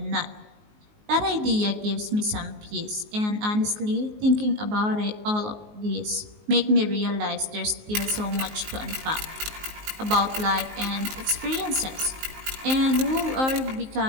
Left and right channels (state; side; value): late; left; 19 ms